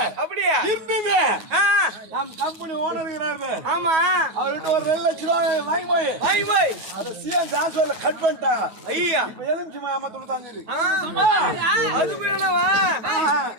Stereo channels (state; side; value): late; left; 9.3 ms